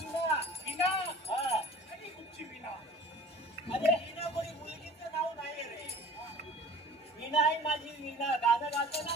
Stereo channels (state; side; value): normal; both; correlation 0.46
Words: विना? हा. आणि कुठची विना? अरे विना कोणी मुलगीचं नाव नाही रे. विना आहे माझी. विना गाणं गातो